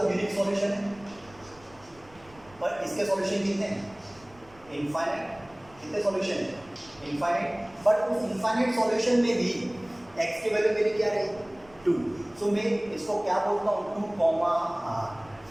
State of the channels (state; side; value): noise; right; rumble, 26 dB below the sound